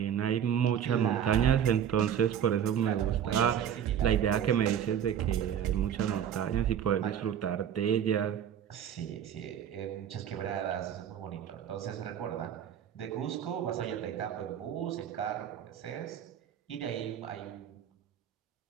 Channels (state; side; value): quieter; left; 9.2 dB